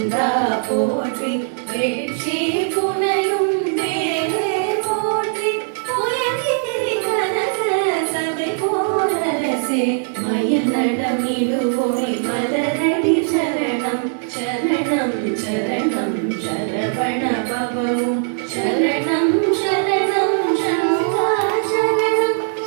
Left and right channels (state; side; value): silent; left; 66 dB below the other